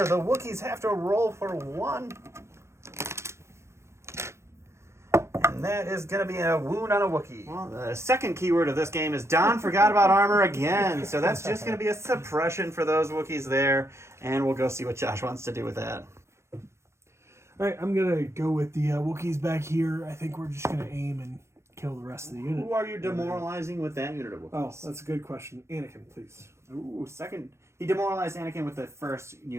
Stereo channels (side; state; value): left; late; 0.13 ms